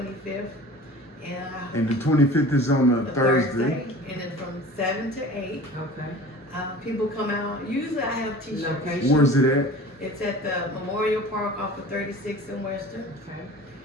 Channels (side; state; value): both; normal; correlation 0.41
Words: And the 25th is on a Thursday. And then from 7 to 8, Okay. people come out. Usually I have t-shirts. Location. Where's it at? It's at the Memorial Park off of 36 in Western.